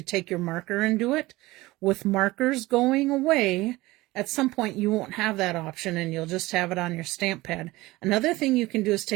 take your marker and do it. With markers going away, at some point you won't have that option and you'll just have it on your stamp pad. Another thing you can do is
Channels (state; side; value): quieter; left; 19.5 dB